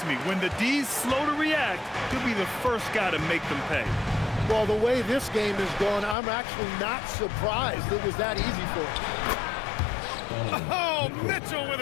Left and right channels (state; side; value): drops out; right; at 6.2 s